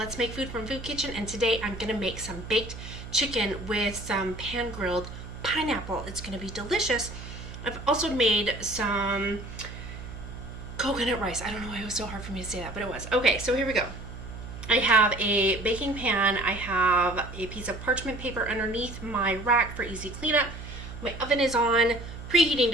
Make Food from Food Kitchen, and today I'm going to make some baked chicken with some pan-grilled pineapple. It's going to be delicious. I've also made some coconut rice. I don't know why it was so hard for me to say that, but it was. Okay, so here we go. I have a baking pan. I have a piece of parchment paper underneath my rack for easy cleanup. My oven is on, preheating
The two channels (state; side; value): noise; right; hum, 11 dB below the sound